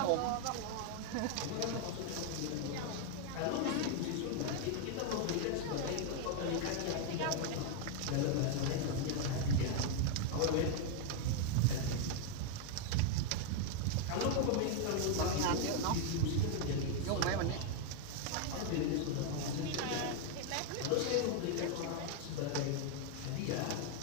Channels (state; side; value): different; both; correlation 0.01